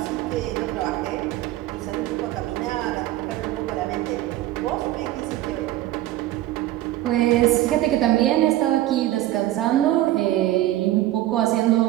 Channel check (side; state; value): left; quieter; 15.0 dB